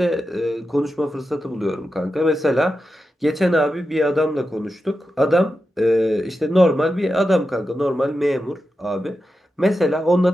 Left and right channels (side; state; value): both; normal; correlation 0.90